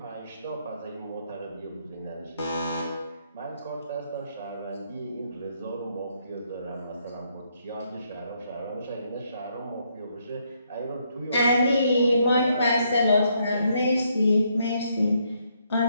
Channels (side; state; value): both; inverted; correlation -0.74